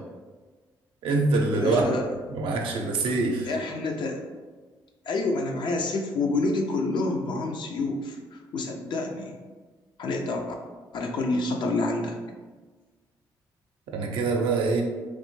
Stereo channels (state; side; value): normal; both; correlation 0.59